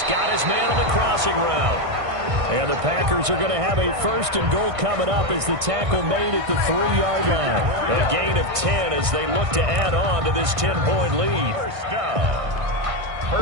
got his man on the crossing route. And the Packers are going to have a 1st and goal coming up as the tackle made at the 3-yard line. A gain of 10 as they look to add on to this 10-point lead. 1st down.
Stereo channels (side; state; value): left; late; 1.6 ms